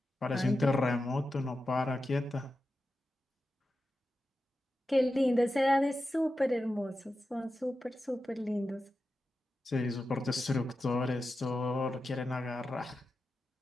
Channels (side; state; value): both; normal; correlation 0.91